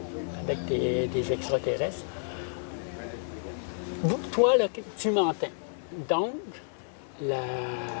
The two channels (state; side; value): silent; right; 58 dB below the other